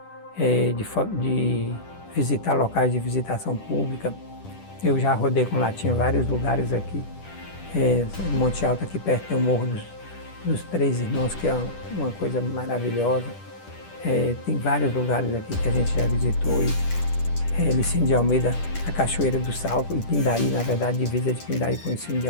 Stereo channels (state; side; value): late; right; 10 ms